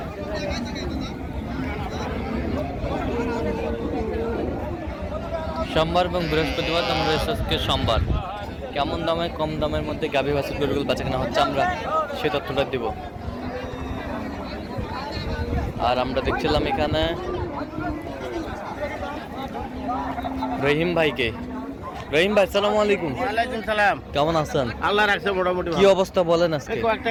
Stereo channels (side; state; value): both; identical; correlation 1.00